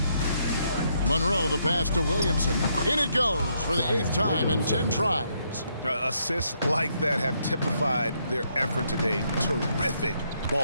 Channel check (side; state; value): both; inverted; correlation -0.75